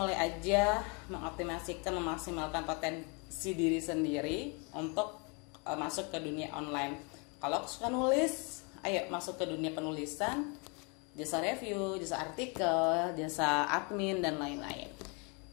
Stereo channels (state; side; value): quieter; right; 33.0 dB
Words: aja mengoptimasikan, memaksimalkan potensi diri sendiri untuk masuk ke dunia online. Kalau suka nulis, ayo masuk ke dunia penulisan, jasa review, jasa artikel, jasa admin dan lain-lain.